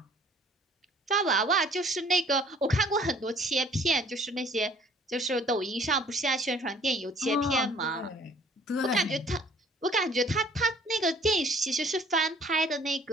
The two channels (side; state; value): both; normal; correlation 0.55